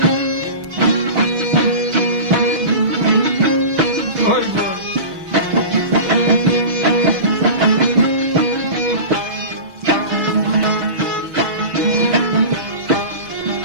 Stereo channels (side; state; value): left; late; 6.2 ms